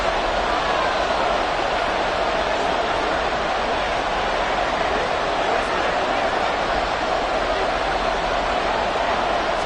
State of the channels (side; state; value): both; identical; correlation 1.00